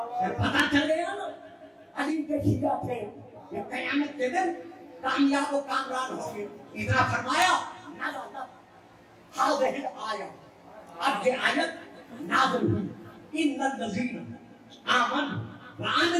پھر پتہ چلے گا نا علی کے شیعہ تھے، یہ قیامت کے دن کامیاب و کامران ہوں گے۔ اتنا فرمایا نازلت ہذہ الآیہ، اب یہ آیت نازل ہوئی، ان الذین آمنوا وعملوا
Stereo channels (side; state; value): both; identical; correlation 1.00